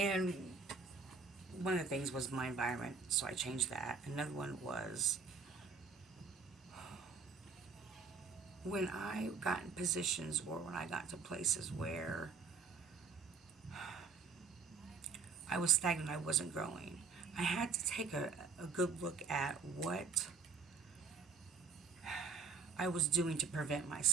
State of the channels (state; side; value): quieter; left; 4.9 dB